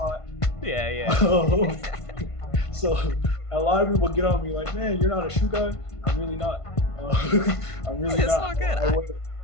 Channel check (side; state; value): right; late; 1.5 ms